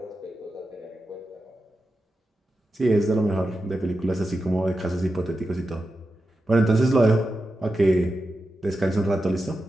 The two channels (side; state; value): both; normal; correlation 0.90